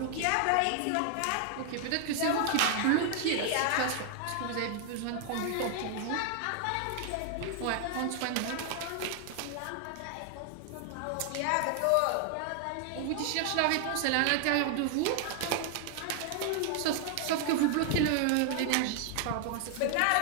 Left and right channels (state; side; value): different; both; correlation 0.00